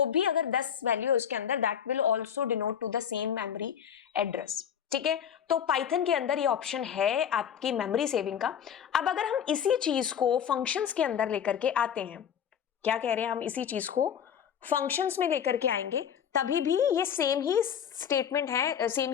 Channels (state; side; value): quieter; right; 8.5 dB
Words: भी अगर 10 वैल्यू है उसके अंदर, that will also denote to the same memory address, ठीक है। तो पाइथन के अंदर ये ऑप्शन है आपकी मेमोरी सेविंग का। अब अगर हम इसी चीज को फंक्शंस के अंदर लेकर के आते हैं, क्या कह रहे हैं, हम इसी चीज को फंक्शंस में लेकर के आएंगे, तभी भी ये सेम ही स्टेटमेंट है, सेम